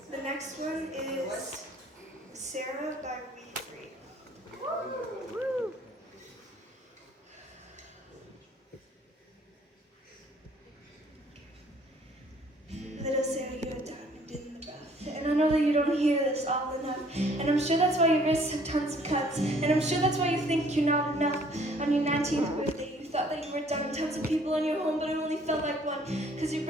The next one is Sarah by We Free. Woo. Little Sarah, you're a diamond in the rough. And I know that you don't hear this all enough. And I'm sure that's why your wrists have tons of cuts. And I'm sure that's why you think you're not enough. On your 19th birthday, you thought that you were done. Tons of people in your home, but it only felt like one. Because your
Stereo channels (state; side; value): normal; both; correlation 0.59